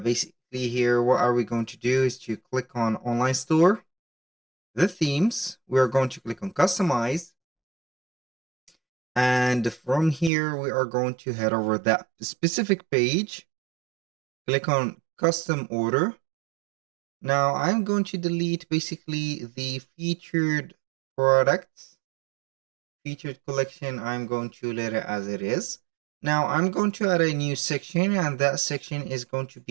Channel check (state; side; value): drops out; left; at 10.3 s